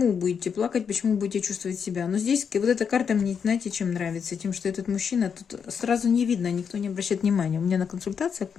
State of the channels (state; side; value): quieter; right; 6.8 dB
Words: будете плакать, почему будете чувствовать себя. Но здесь вот эта карта мне, знаете, чем нравится? Тем, что этот мужчина, тут сразу не видно, никто не обращает внимания. У меня на консультациях